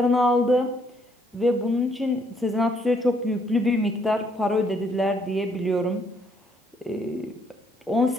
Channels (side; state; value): both; normal; correlation 0.69